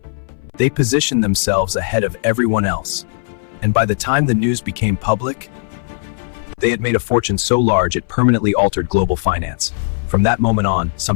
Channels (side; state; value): right; silent; 63 dB below the other